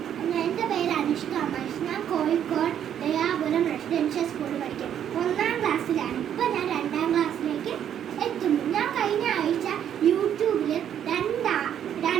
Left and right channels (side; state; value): left; quieter; 9.6 dB